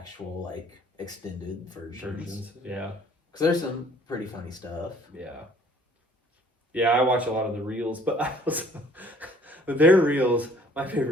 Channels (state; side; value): normal; both; correlation 0.57